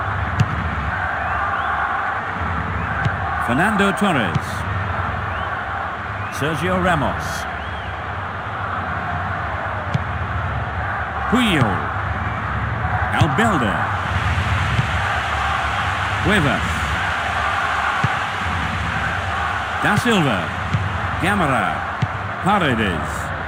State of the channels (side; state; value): right; noise; rumble, 28 dB below the sound